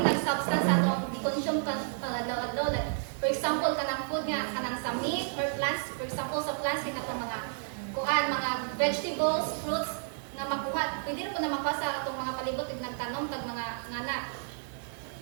substance sa itong i-consume ka pangadaw-adaw. Like, for example, kanang food nga, kanang sa meat or plants, for example, sa plants, itong mga vegetables, fruits, nga makuha. Pwede na po na makuha sa itong mga palibot, nagtanom, tag mga ngana.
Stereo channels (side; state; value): left; silent; digital silence